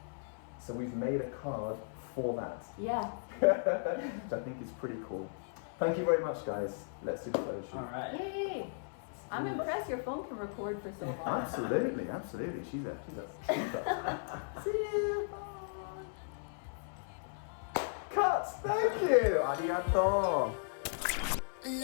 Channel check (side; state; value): right; silent; 54 dB below the other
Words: So we've made a card for that. Yeah. Which I think is pretty cool. Thank you very much, guys. Let's do the photo shoot. All right. Yay! I'm impressed your phone can record for so long. Absolutely, absolutely. She's a super. See you. Bye. Cut. Thank you. Arigato.